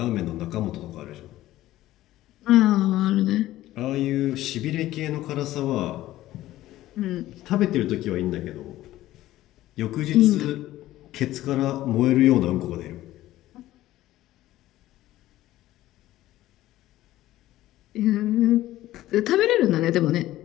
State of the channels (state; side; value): quieter; right; 15.1 dB